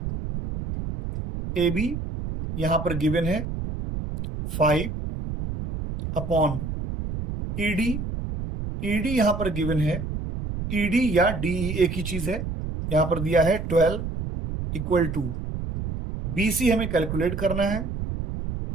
ए बी यहां पर गिवन है 5 अपॉन ईडी, ईडी यहां पर गिवन है, ईडी या डीई एक ही चीज है, यहां पर दिया है 12 इक्वल टू बीसी हमें कैलकुलेट करना है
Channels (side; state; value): right; noise; rumble, 5 dB below the sound